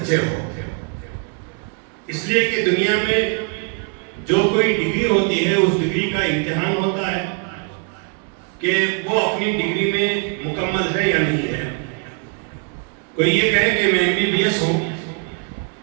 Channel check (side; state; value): left; quieter; 37.4 dB